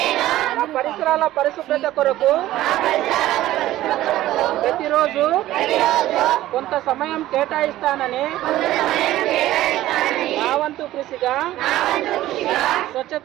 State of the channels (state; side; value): quieter; left; 15.0 dB